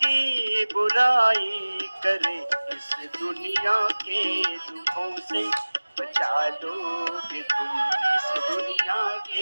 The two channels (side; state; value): both; inverted; correlation -1.00